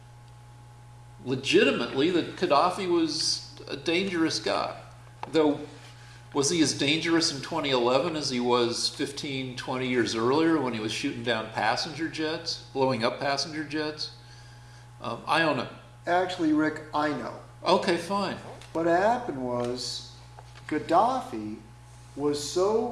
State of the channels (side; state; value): both; identical; correlation 1.00